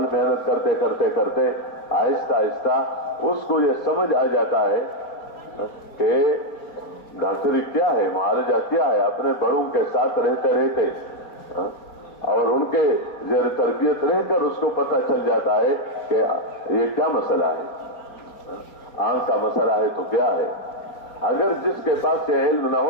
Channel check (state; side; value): late; right; 4.2 ms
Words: محنت کرتے کرتے کرتے آہستہ آہستہ اس کو یہ سمجھ آ جاتا ہے کہ ڈاکٹری کیا ہے، معالجہ کیا ہے. اپنے بڑوں کے ساتھ رہتے رہتے اور ان کے زیر تربیت رہ کر اس کو پتہ چل جاتا ہے کہ یہ کیا مسئلہ ہے. آنکھ کا مسئلہ ہے تو کیا ہے؟ اگر جس کے پاس یہ علم نہ